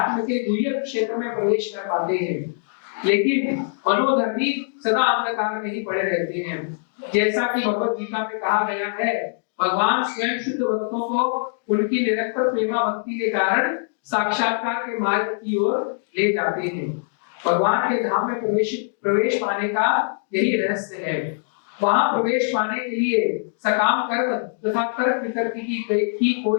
के गुह्य क्षेत्र में प्रवेश कर पाते हैं। लेकिन मनोधर्मी सदा अंधकार में ही पड़े रहते हैं। जैसा कि भगवत गीता में कहा गया है, भगवान स्वयं शुद्ध भक्तों को उनकी निरंतर प्रेमा भक्ति के कारण साक्षात्कार के मार्ग की ओर ले जाते हैं। भगवान के धाम में प्रवेश पाने का यही रहस्य है। वहां प्रवेश पाने के लिए सकाम कर्म तथा तर्क वितर्क की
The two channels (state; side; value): silent; right; digital silence